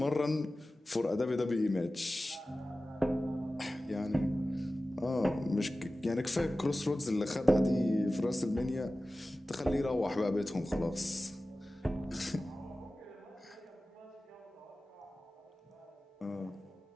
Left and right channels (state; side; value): normal; both; correlation 0.96